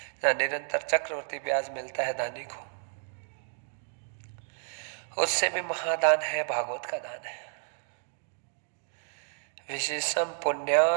जहाँ निरंतर चक्रवर्ती ब्याज मिलता है दानी को। उससे भी महादान है भागवत का दान है। विशेषम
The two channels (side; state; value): left; silent; digital silence